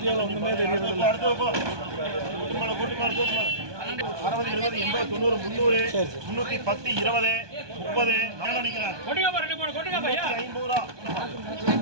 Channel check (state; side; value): late; left; 1.2 ms